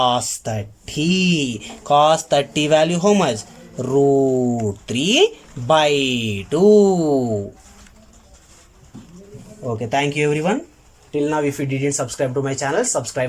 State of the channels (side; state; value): both; identical; correlation 1.00